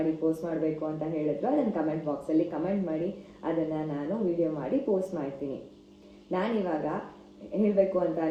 ಪೋಸ್ಟ್ ಮಾಡಬೇಕು ಅಂತ ಹೇಳಿದ್ರು ಅದನ್ನು ಕಮೆಂಟ್ ಬಾಕ್ಸಲ್ಲಿ ಕಮೆಂಟ್ ಮಾಡಿ, ಅದನ್ನು ನಾನು ವಿಡಿಯೋ ಮಾಡಿ ಪೋಸ್ಟ್ ಮಾಡ್ತೀನಿ. ನಾನಿವಾಗ ಹೇಳಬೇಕು ಅಂತ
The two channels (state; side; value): identical; both; correlation 1.00